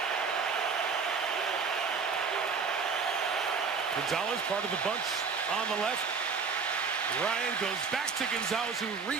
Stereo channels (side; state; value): left; quieter; 5.3 dB